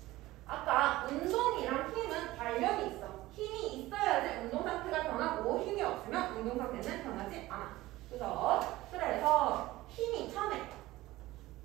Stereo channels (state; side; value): quieter; left; 17.6 dB